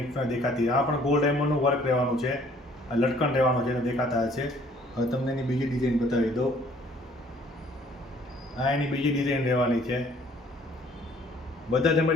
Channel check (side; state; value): both; normal; correlation 0.58